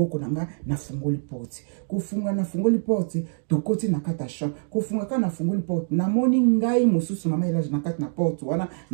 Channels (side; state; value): left; silent; digital silence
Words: na nga na fungoli porte kufunga na fungoli porte tokoti na kata chambre kufunga kana fungoli porte na moni ngai mosusu mama Elage na kati na porte wana